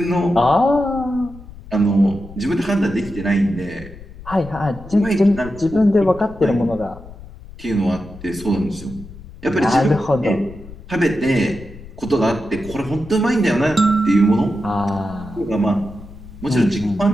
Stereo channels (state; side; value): noise; left; rumble, 16 dB below the sound